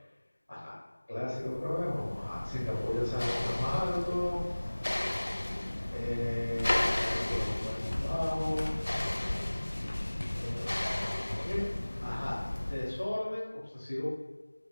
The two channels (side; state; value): both; inverted; correlation -1.00